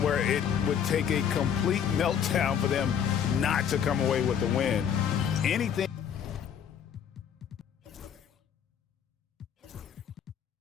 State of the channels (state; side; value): quieter; right; 8.3 dB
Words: where it would take a complete meltdown for them not to come away with the win. Anything.